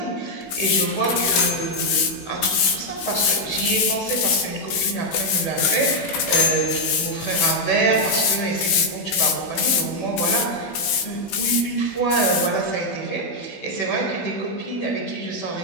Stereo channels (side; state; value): right; late; 16 ms